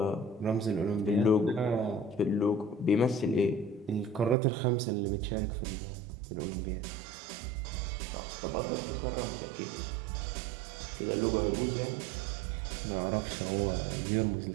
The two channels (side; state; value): left; drops out; at 4.4 s